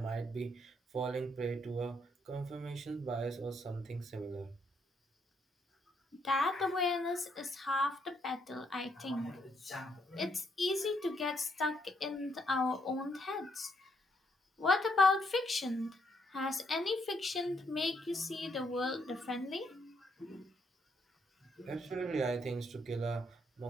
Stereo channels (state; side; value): normal; both; correlation 0.74